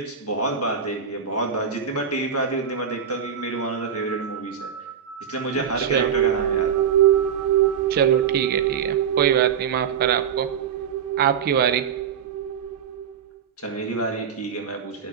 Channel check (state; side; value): quieter; left; 7.7 dB